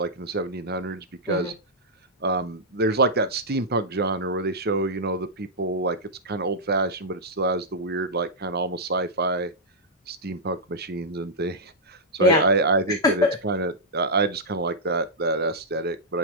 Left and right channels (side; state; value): both; normal; correlation -0.08